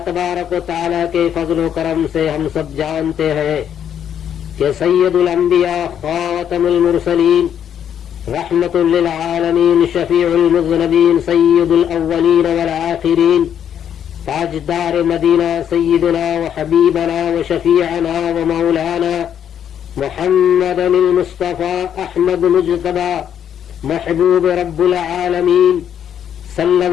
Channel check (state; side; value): quieter; right; 9.2 dB